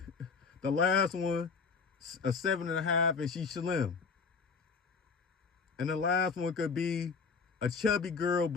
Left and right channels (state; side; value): quieter; right; 5.1 dB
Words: the last one, a 7.5 and she's slim. And the last one could be a chubby girl,